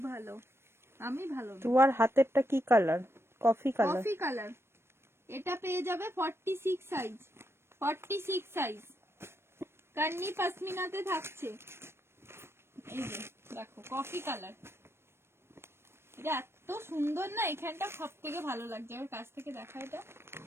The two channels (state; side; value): late; left; 0.12 ms